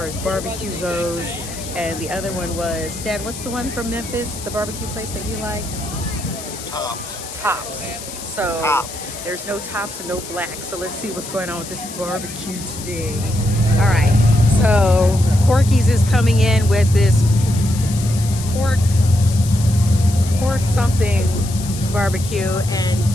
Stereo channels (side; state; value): left; noise; hiss, 11 dB below the sound